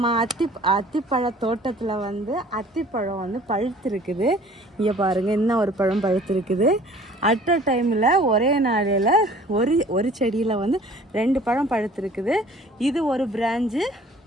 அத்திப்பழ தோட்டத்தில் வந்து அத்திப்பழம் வந்து பழுத்திருக்குது. இங்கே பாருங்கள், இன்னும் ஒரு பழம் பழுத்திருக்குது. அட் அ டைமில் ஒரே நாளில் ஒரு செடியில் வந்து 2 பழம் பழுத்திருக்குது. இது ஒரு பிரான்ச்சு,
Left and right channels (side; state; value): both; normal; correlation 0.51